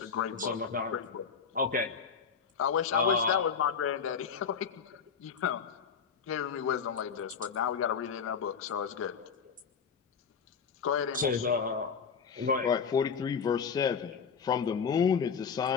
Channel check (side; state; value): right; quieter; 6.3 dB